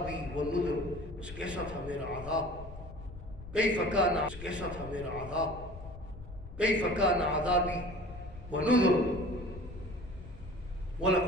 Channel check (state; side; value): noise; left; rumble, 14 dB below the sound